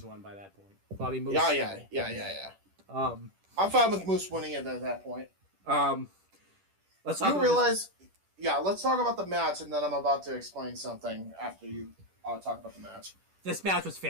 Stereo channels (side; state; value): left; late; 10 ms